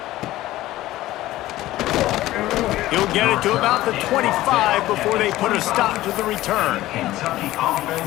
He'll get it to about the 25 before they put a stop to the return.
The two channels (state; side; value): quieter; right; 16.0 dB